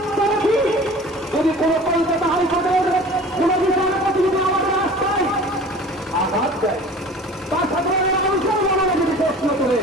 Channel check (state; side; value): normal; both; correlation 0.42